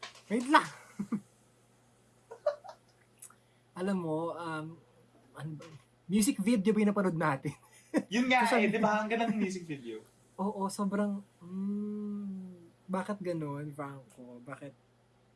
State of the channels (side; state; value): both; identical; correlation 1.00